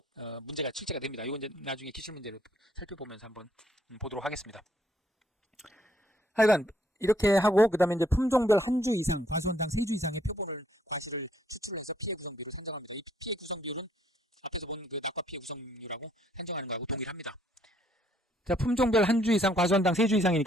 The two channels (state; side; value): normal; both; correlation 0.67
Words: 문제가 출제가 됩니다. 이건 이제 나중에 기출 문제를 살펴보면서 한번 보도록 하겠습니다. 하여간 이렇게 하고 그 다음에 이제 품종별 한 주 이상, 과수원당 3주 이상의 표본을 과실을 추출해서 피해 구성비를 산정합니다. 이 피해 구성비율은 앞에서 본 그 낙과 피해 구성률하고 산정하는 거하고 동일합니다. 자, 품종별 한 주 이상, 과수원당 3주